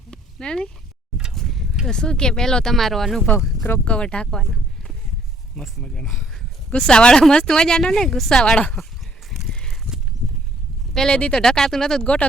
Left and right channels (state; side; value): normal; both; correlation 0.63